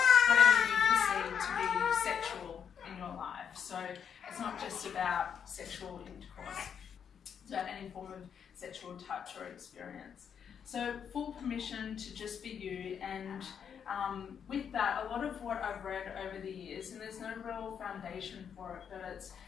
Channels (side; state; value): right; quieter; 7.7 dB